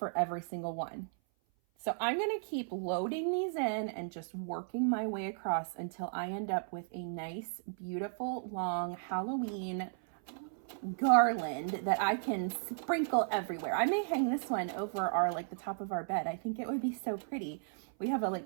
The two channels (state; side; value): silent; left; 54 dB below the other